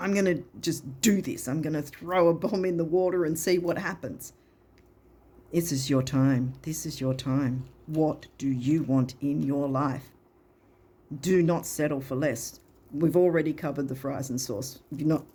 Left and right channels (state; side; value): identical; both; correlation 1.00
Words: going to just do this. I'm going to throw a bomb in the water and see what happens. This is your time. This is your time. What do you want in your life? Do not settle for less. We've already covered the fries and sauce. You're not